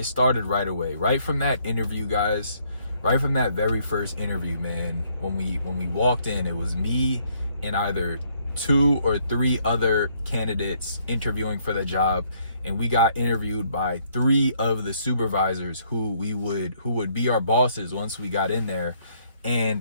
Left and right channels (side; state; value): both; inverted; correlation -0.68